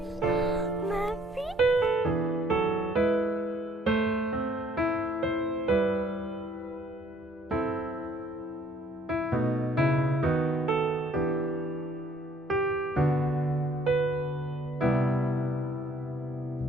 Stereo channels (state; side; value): normal; both; correlation 0.63